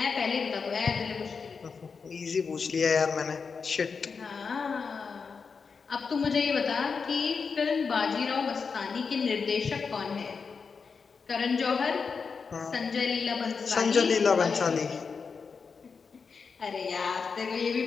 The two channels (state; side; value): quieter; right; 5.4 dB